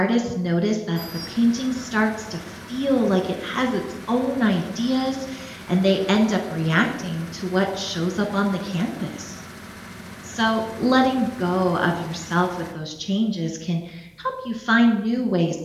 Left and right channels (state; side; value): identical; both; correlation 1.00